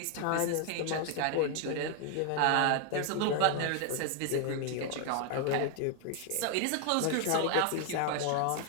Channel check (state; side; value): different; both; correlation 0.00